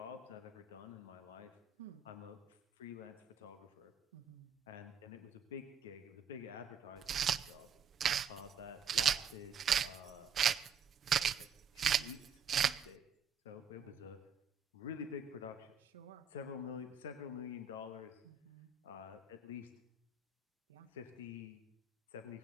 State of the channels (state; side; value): quieter; left; 6.2 dB